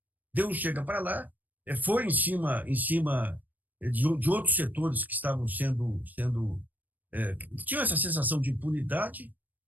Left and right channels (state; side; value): late; left; 0.084 ms